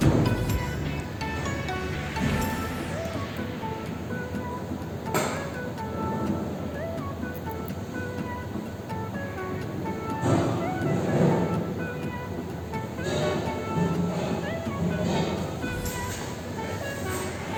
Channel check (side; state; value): both; identical; correlation 1.00